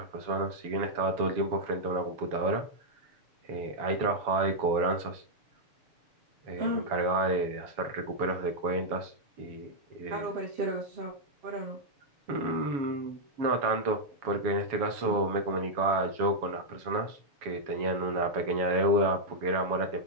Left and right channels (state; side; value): late; left; 7.2 ms